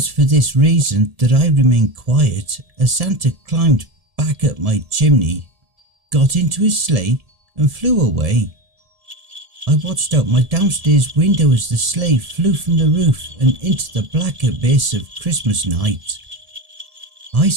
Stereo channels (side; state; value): left; late; 1.7 ms